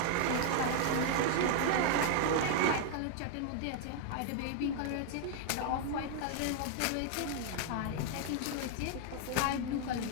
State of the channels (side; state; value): both; different; correlation 0.00